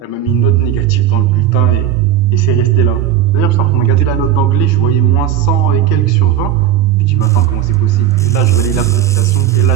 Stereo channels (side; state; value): left; quieter; 10.5 dB